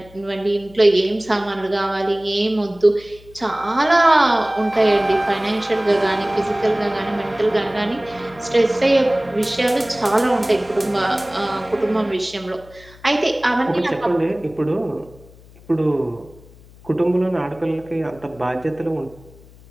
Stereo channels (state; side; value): noise; left; hum, 23 dB below the sound